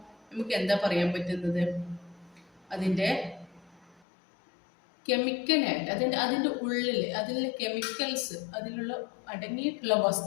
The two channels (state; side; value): drops out; right; at 4.0 s